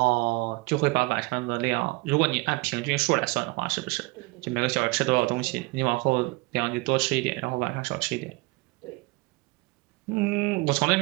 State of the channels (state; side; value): quieter; left; 24.4 dB